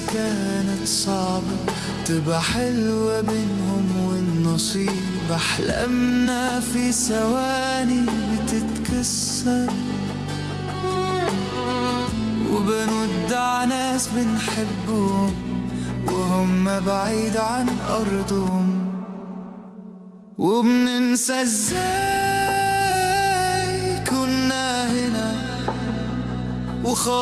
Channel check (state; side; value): identical; both; correlation 1.00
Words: كانت صعبة تبقى حلوة بينهم والنصيب، أحلامنا في ثواني بتتكسر، وبنودع ناس بنحبهم وهم بعيد عن أرضهم، وبننسى ازاي كنا هنا